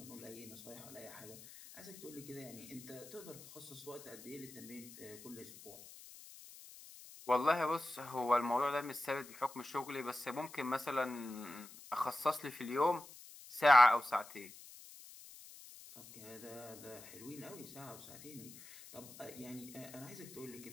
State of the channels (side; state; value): left; noise; hiss, 17 dB below the sound